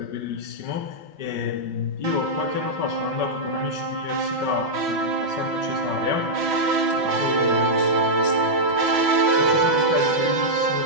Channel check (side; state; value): left; late; 6.1 ms